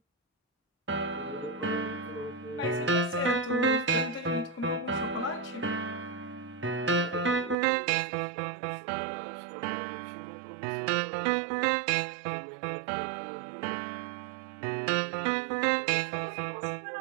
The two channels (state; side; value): drops out; left; at 7.6 s